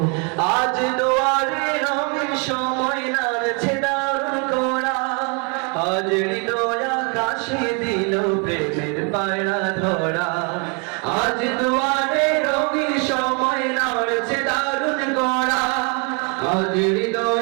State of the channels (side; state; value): left; quieter; 35.2 dB